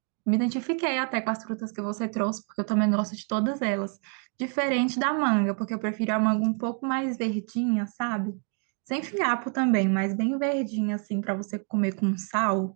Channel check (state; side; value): quieter; left; 39.7 dB